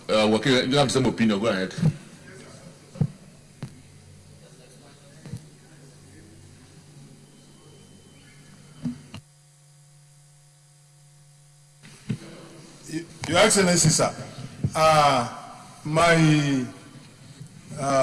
okay, you have the same opinion, go ahead. Your Excellency, sir, my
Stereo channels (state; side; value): identical; both; correlation 1.00